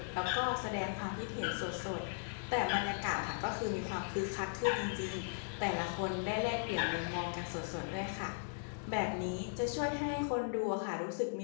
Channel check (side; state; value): right; silent; digital silence